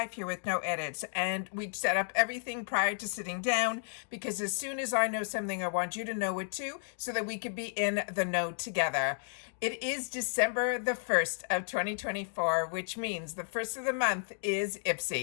here with no edits and we set up everything prior to sitting down because as soon as I know something I want you to know it too so that we could be in the know together. It is December the 1st of 2024, which means the first of the month is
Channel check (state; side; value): silent; right; digital silence